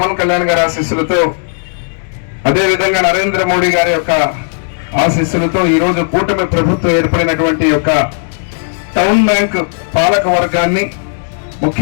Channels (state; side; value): silent; right; digital silence